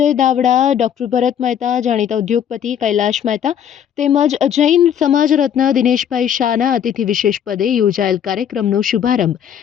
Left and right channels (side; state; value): right; quieter; 9.1 dB